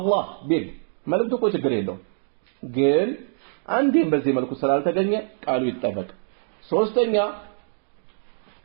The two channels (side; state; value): left; silent; digital silence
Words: ቢል መልእክቱ እኮ ችግር የለውም። ግን አንዴም በዚህ መልኩ ስላልተገኘ ቃሉ ይጠበቅ። ሶስተኛ